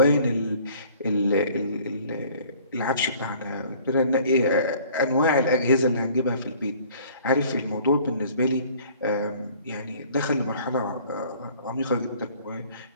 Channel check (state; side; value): inverted; both; correlation -0.53